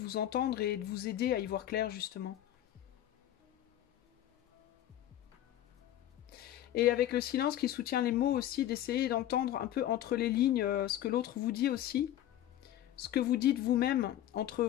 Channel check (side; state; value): right; quieter; 12.4 dB